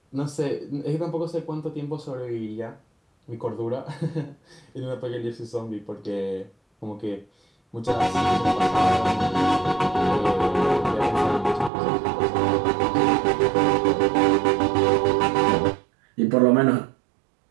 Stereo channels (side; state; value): left; drops out; at 11.7 s